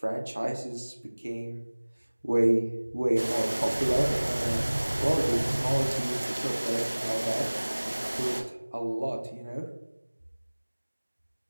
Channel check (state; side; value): inverted; both; correlation -1.00